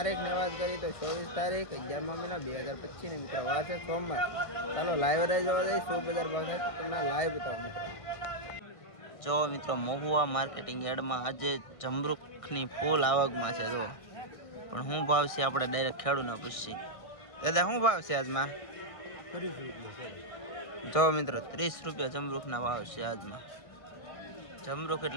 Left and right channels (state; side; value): late; right; 1.5 ms